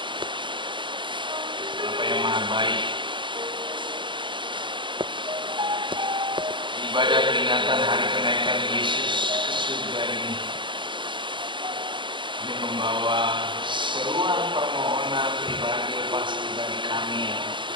Bapa yang maha baik, ibadah peringatan hari kenaikan Yesus ke surga ini membawa seruan permohonan pribadi pasti bagi kami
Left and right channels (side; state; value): left; late; 0.23 ms